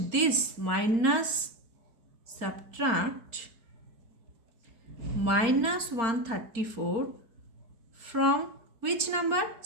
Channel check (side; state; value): left; late; 4.4 ms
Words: this minus 134 from which number?